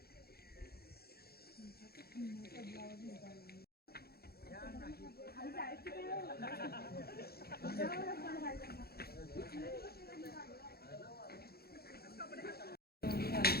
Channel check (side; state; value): right; late; 0.45 ms